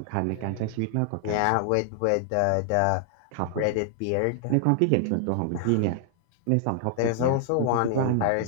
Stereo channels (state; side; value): different; both; correlation 0.00